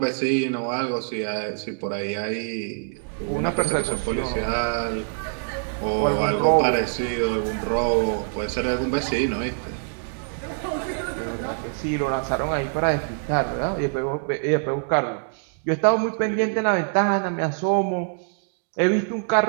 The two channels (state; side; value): silent; left; digital silence